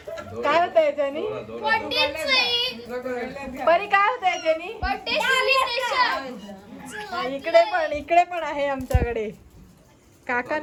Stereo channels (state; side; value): identical; both; correlation 1.00